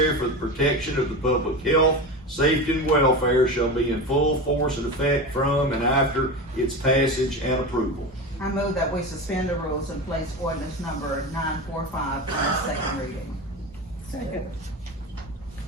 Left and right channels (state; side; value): normal; both; correlation 0.25